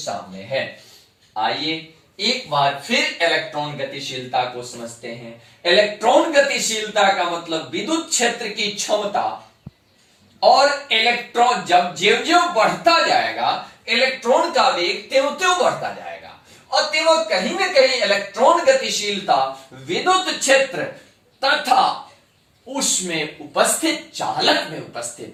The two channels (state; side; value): identical; both; correlation 1.00